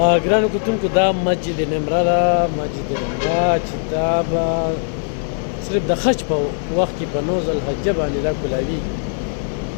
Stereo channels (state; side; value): silent; right; digital silence